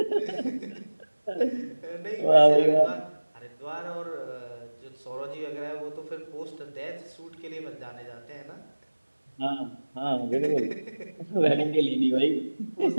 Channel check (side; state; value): both; inverted; correlation -1.00